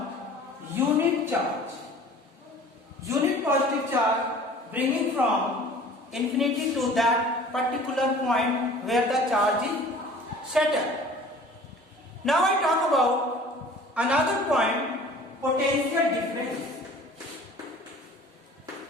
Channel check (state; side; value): normal; both; correlation 0.46